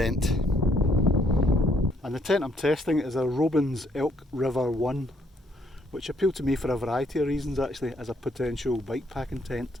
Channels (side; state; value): both; normal; correlation 0.69